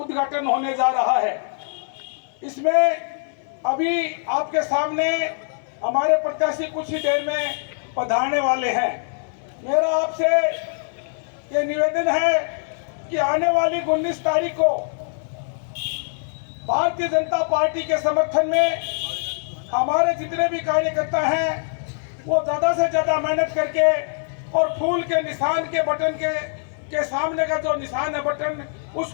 होने जा रहा है। इसमें अभी आपके सामने हमारे प्रत्याशी कुछ ही देर में पधारने वाले हैं। मेरा आपसे ये निवेदन है कि आने वाली 19 तारीख को भारतीय जनता पार्टी के समर्थन में हमारे जितने भी कार्यकर्ता हैं वो ज़्यादा से ज़्यादा मेहनत करके और फूल के निशान के बटन के सामने का जो निशान है बटन,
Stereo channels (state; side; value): silent; right; 63 dB below the other